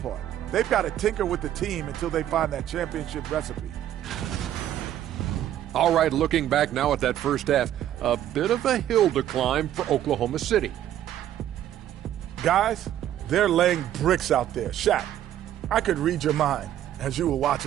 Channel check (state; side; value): quieter; left; 11.7 dB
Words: They've got to tinker with the team until they find that championship recipe. All right, looking back now at that first half, a bit of a hill to climb for Oklahoma City. Guys, they're laying bricks out there. Shaq, I could read your mind as you were